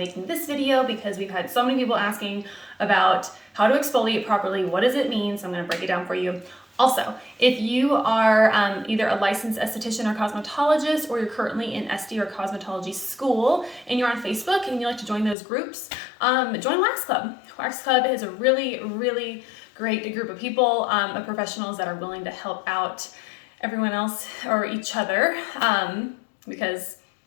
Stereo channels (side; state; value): right; drops out; at 15.4 s